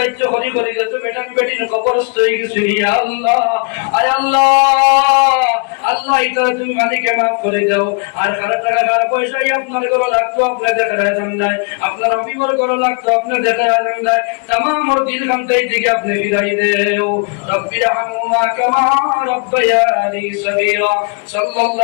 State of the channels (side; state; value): right; quieter; 36.9 dB